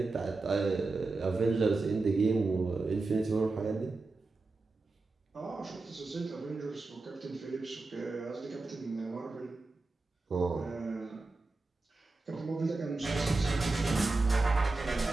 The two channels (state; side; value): quieter; left; 3.5 dB